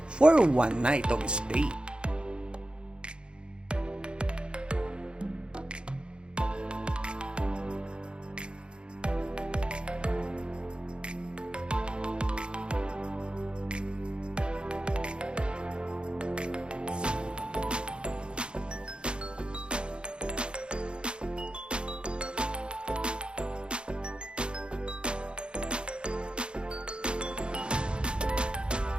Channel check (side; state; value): left; late; 0.054 ms